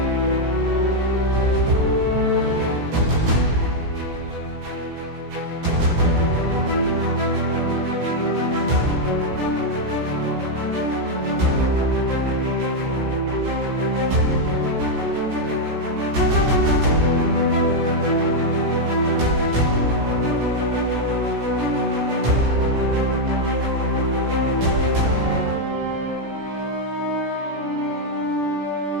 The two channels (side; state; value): left; late; 17 ms